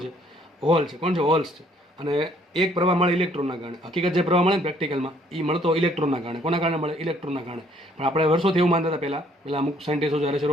છે? હોલ છે. કોણ છે? હોલ્સ છે. અને એક પ્રવાહ મળે ઇલેક્ટ્રોનના કારણે. હકીકત જે પ્રવાહ મળે ને પ્રેક્ટિકલમાં એ મળતો ઇલેક્ટ્રોનના કારણે. કોના કારણે મળે? ઇલેક્ટ્રોનના કારણે. પણ આપણે વર્ષોથી એવું માનતા હતા પહેલા અમુક સાયન્ટિસ્ટો જ્યારે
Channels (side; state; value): both; normal; correlation 0.63